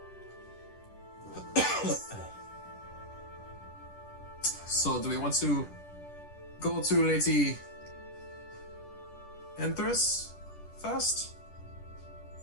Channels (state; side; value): late; right; 10 ms